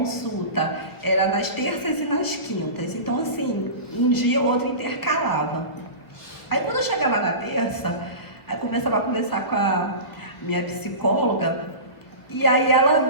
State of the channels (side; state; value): right; late; 1.4 ms